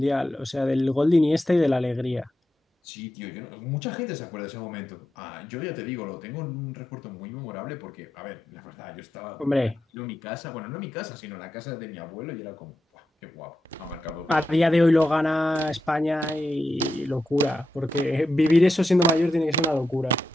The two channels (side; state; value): both; normal; correlation 0.87